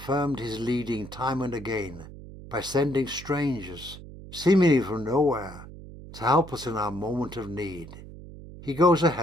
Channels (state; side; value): noise; right; hum, 15 dB below the sound